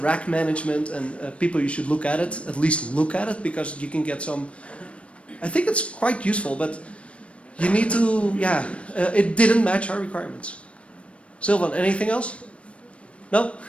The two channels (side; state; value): right; late; 0.061 ms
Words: management, and people, you should look at it, at least look at it, because you can get some, I think it's quite useful, but you need to, it didn't match our requirements. Sylvan, anything else? No?